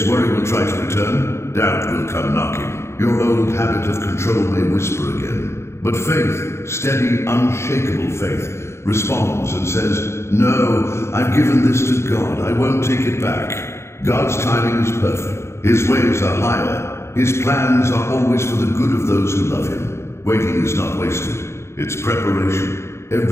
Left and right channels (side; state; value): right; late; 0.13 ms